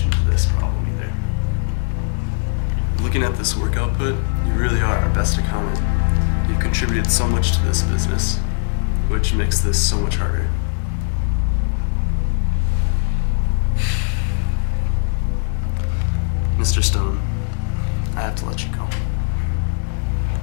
to this problem either. Looking at this work output, you really are our best accountant. You've contributed so much to this business, which makes this so much harder. Mr. Stone, I have to let you go.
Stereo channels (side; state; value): right; silent; digital silence